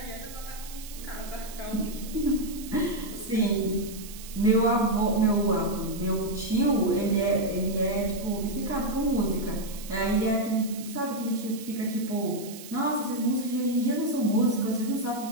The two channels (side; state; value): right; noise; hiss, 15 dB below the sound